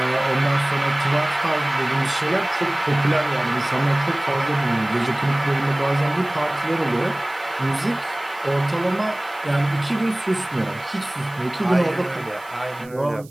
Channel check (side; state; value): right; noise; hiss, 24 dB below the sound